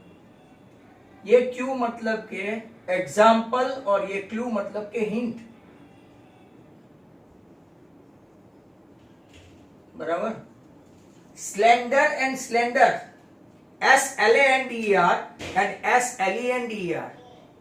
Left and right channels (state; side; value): identical; both; correlation 1.00